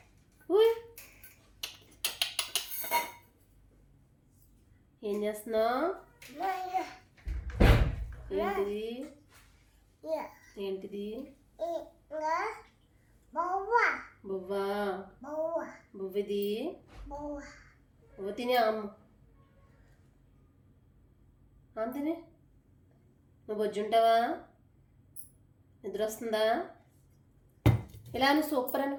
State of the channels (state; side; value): identical; both; correlation 1.00